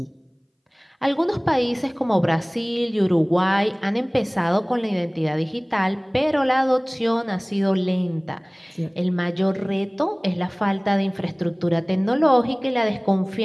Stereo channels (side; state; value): both; identical; correlation 1.00